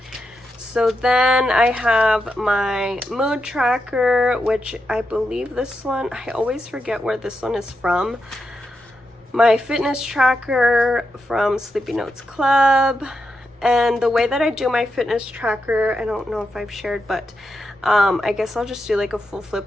So then I have my mood tracker, which I believe this one, I always forget where this one is from. My fitness tracker from slepynotesclub. And the way that I do my fitness tracker, I don't know if I've shared, but I guess I'll just do like a full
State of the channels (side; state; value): both; normal; correlation 0.86